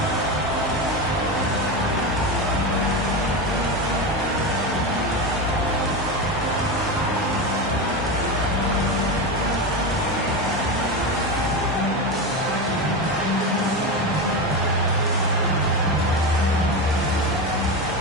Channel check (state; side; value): normal; both; correlation 0.18